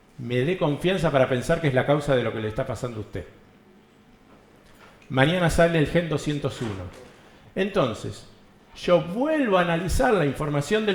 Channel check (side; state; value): both; identical; correlation 1.00